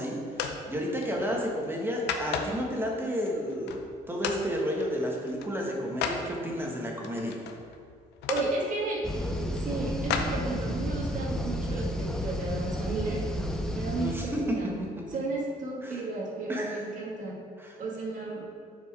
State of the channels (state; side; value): normal; both; correlation 0.60